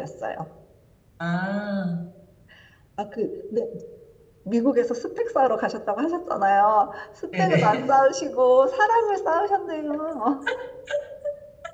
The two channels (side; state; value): both; identical; correlation 1.00